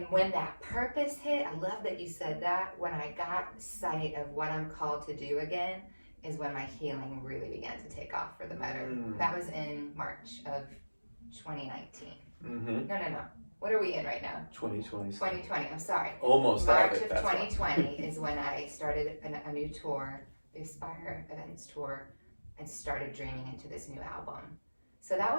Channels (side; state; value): both; inverted; correlation -1.00